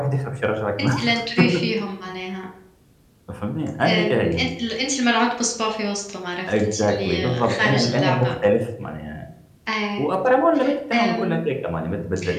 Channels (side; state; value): both; identical; correlation 1.00